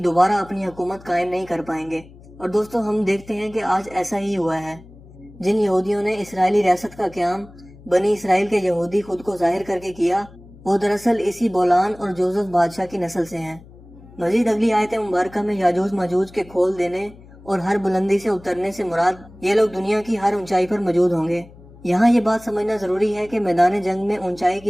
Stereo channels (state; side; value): noise; left; hum, 22 dB below the sound